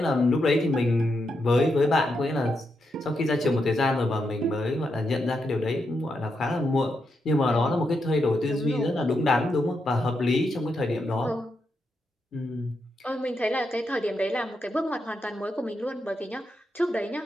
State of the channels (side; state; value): both; normal; correlation 0.83